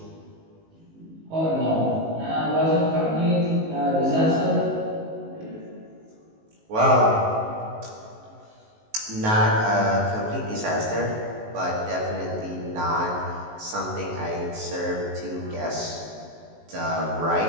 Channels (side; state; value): left; late; 19 ms